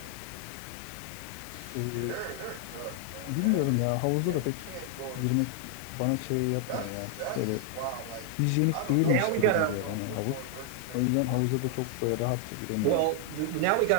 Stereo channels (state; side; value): different; both; correlation 0.00